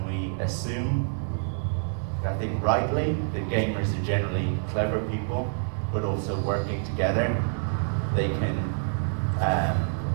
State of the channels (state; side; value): silent; left; 60 dB below the other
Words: we assume, I think rightly, that gamers are generally clever people, but also working together, they can